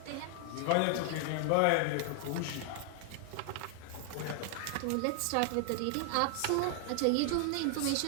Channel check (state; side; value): different; both; correlation 0.00